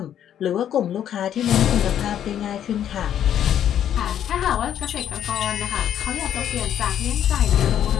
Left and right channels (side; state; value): right; quieter; 10.1 dB